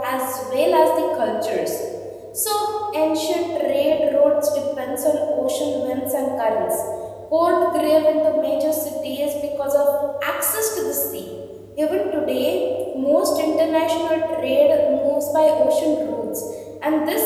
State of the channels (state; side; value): identical; both; correlation 1.00